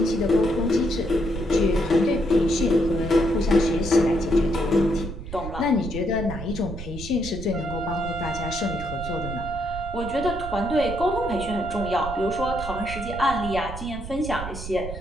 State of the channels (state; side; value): noise; right; rumble, 9 dB below the sound